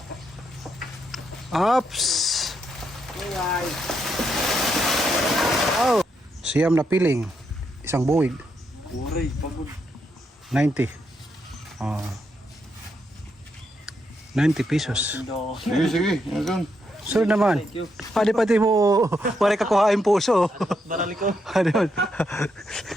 Ops. Oh. Siyam na piling. Isang buwig. 90. 90 pesos. Sige, sige. Yan. So naman. Pati mo wala ka kuhain puso. Barali ko. Ano?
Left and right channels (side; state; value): both; normal; correlation 0.79